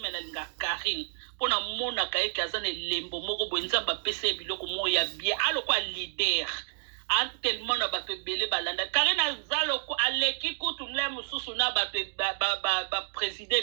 linga Karine pona mona kaye kaza ne lembo moko boye nzamba pese biloko moya bien aloko leader a tellement na bato belé balanda Karine azaloko aleki kutu mle mususu na bato ba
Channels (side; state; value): left; silent; digital silence